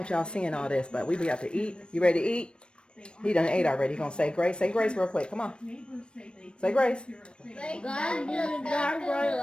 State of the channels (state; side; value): late; right; 0.056 ms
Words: y'all seeing all this, but we have to eat. You ready to eat? He done ate already. He gonna say grace. Say grace real quick. Come on. Say grace. God be the God for a